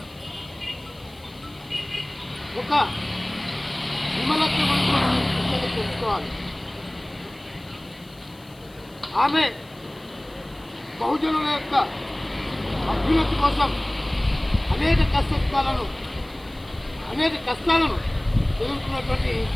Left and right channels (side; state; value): left; noise; hiss, 27 dB below the sound